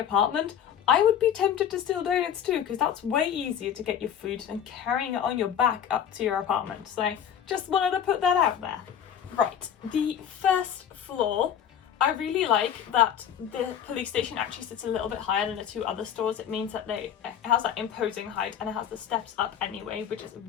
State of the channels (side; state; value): right; quieter; 9.0 dB